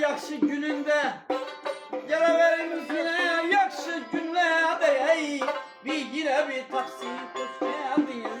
yakşı gününde. Geleverimiz yine yakşı günlerde. Bir yine bir taksi hoş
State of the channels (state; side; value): identical; both; correlation 1.00